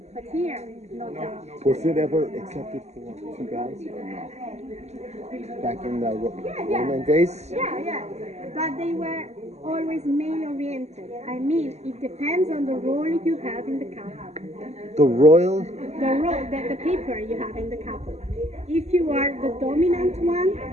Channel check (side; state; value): left; late; 0.32 ms